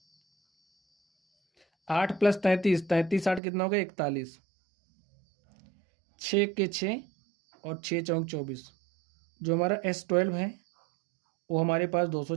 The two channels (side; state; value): left; drops out; at 3.4 s